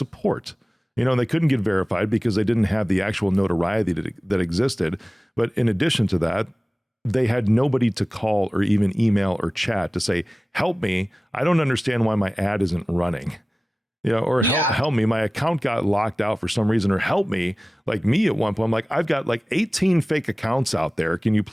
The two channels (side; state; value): both; normal; correlation 0.97